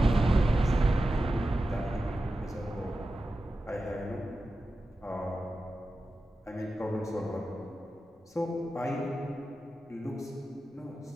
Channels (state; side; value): normal; both; correlation 0.93